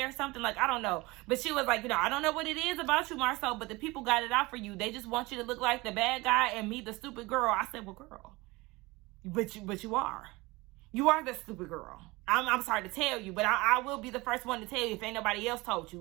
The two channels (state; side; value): quieter; left; 22.5 dB